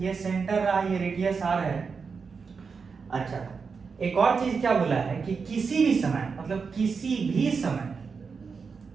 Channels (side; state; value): left; quieter; 5.3 dB